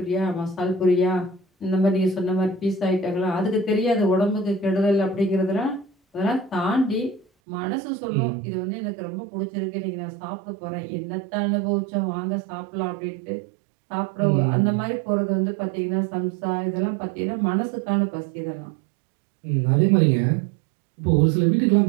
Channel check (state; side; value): drops out; left; at 7.2 s